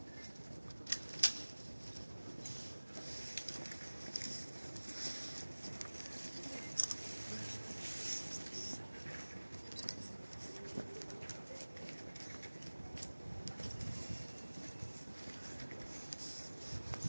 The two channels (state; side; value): inverted; both; correlation -1.00